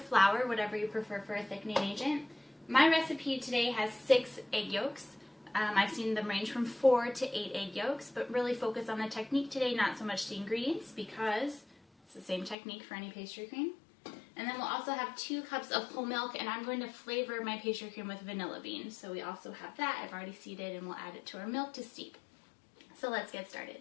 whatever you prefer for a thickening agent. My recipe today has 6 egg yolks. I've seen them range from 4 to 8 egg yolks, but really focus on the technique today, not so much the ingredients, because it's the same technique for any pastry cream. And then we'll also have 2 cups of whole milk, and I'm going to flavor my pastry cream with vanilla beans. So we also have that. I've already seeded, and we'll add it to our milk to steep. So let's get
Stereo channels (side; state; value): right; drops out; at 12.6 s